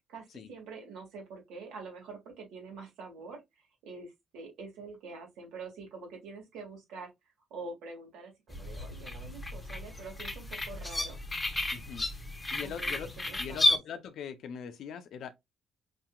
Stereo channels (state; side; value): normal; both; correlation 0.86